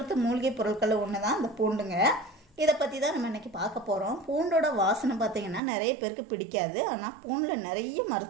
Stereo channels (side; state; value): left; drops out; at 5.6 s